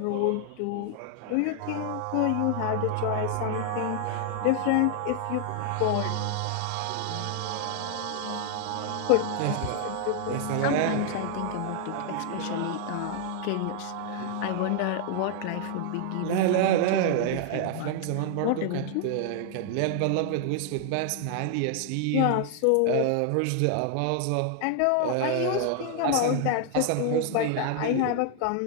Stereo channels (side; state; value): both; different; correlation 0.00